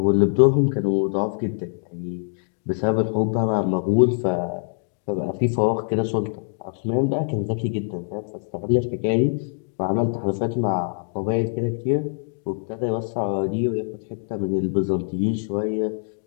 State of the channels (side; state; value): right; silent; digital silence